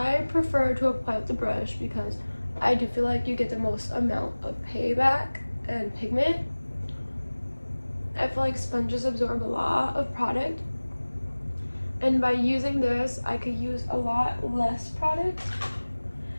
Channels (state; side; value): inverted; both; correlation -1.00